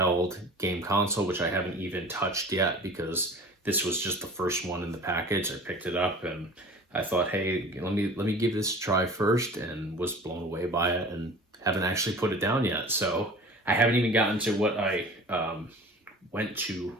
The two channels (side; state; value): both; normal; correlation 0.41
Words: game console, which I haven't even touched yet because this was just the first one in the package. I picked it up and I thought, hey, let me give this a try first, and was blown away by it and haven't actually put it down yet. So I haven't even gotten to what I went to